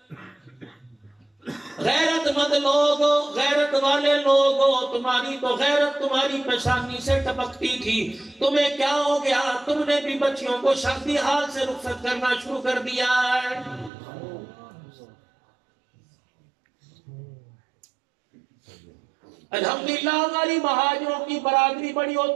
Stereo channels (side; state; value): left; drops out; at 13.9 s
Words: غیرت مند لوگ، غیرت والے لوگ، تمہاری تو غیرت تمہاری پیشانی سے ٹپکتی تھی، تمہیں کیا ہو گیا؟ تم نے بھی بچیوں کو شادی حال سے رخصت کرنا شروع کر دیا ہے۔ الحمدللہ ہماری مہاجروں کی برادری بڑی